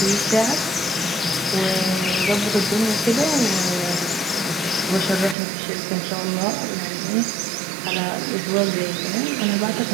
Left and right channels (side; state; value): left; drops out; at 5.4 s